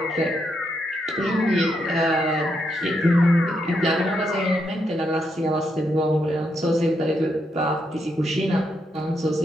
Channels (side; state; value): both; normal; correlation 0.80